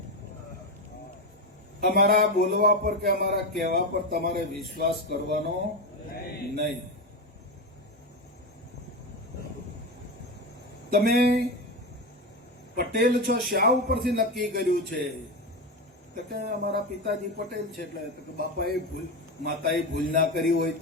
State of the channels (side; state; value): both; normal; correlation 0.16